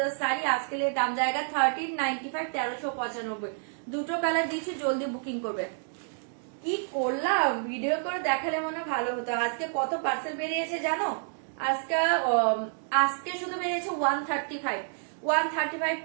साड़ी, आज के लिए दाम जाएगा 1395, 1395। দুটো কালার দিচ্ছি, জলদি বুকিং করবে। কি করলাম, ভিডিও করে দেখালে মনে ভালো হতো। আজকে কত পার্সেল বেরিয়েছে জানো? আজকে শুধু বেরিয়েছে 135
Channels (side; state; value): left; silent; digital silence